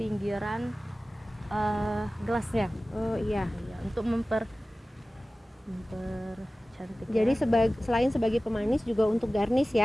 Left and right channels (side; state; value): both; normal; correlation 0.97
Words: gelasnya. Oh iya. Iya, untuk mempercantik. Jadi ya. selain sebagai pemanis juga untuk garnish